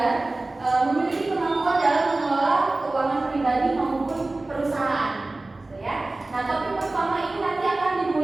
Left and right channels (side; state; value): left; quieter; 3.0 dB